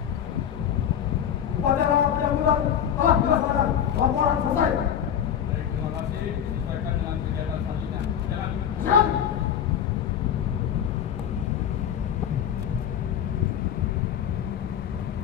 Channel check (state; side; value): quieter; right; 9.3 dB